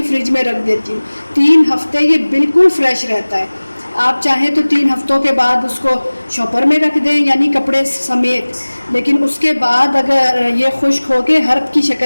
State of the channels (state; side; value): inverted; both; correlation -1.00